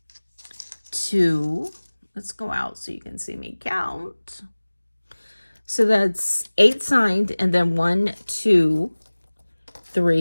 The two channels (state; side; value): inverted; both; correlation -1.00